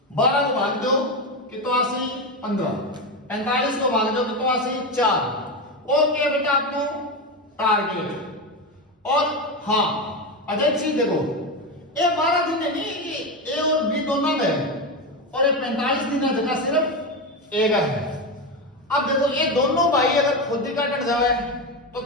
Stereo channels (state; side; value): normal; both; correlation 0.15